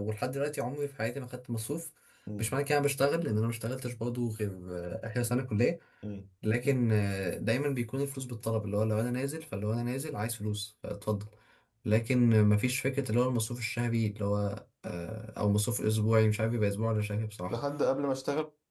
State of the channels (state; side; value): identical; both; correlation 1.00